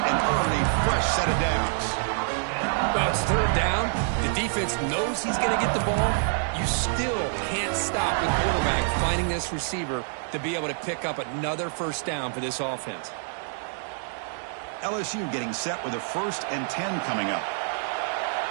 and earned a fresh set of downs. Well, it's third down. The defense knows he's going to get the ball. You still can't stop the quarterback finding this receiver to be able to pick up another first down for this offense. LSU getting set with a 1st and 10 coming up.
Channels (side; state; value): left; silent; digital silence